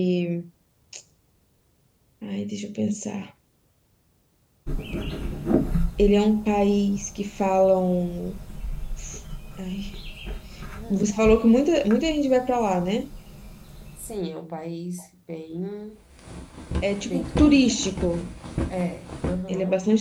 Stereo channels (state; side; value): identical; both; correlation 1.00